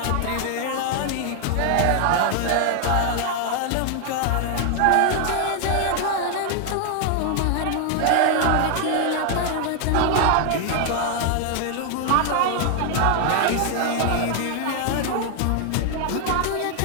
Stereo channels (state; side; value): different; both; correlation 0.00